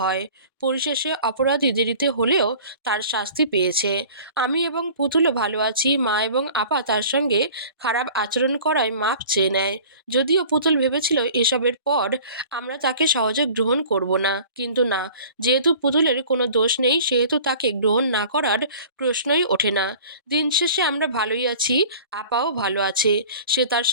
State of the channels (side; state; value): both; inverted; correlation -0.45